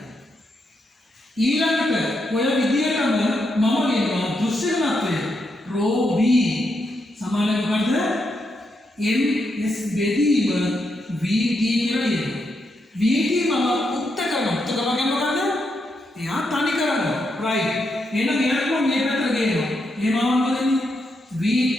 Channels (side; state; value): both; normal; correlation 0.82